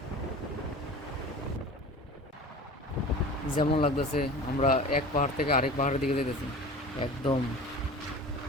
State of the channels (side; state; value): both; normal; correlation 0.38